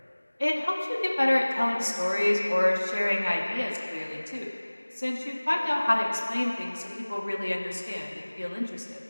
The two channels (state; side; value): inverted; both; correlation -1.00